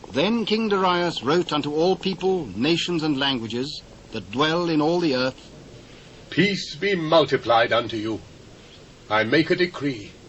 Then King Darius wrote unto all people, nations, and languages, that dwell in all the earth, Peace be multiplied unto you. I make a decree,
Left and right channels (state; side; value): identical; both; correlation 1.00